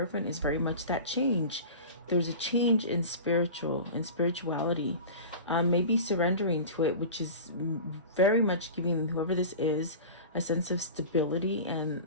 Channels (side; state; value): both; inverted; correlation -0.34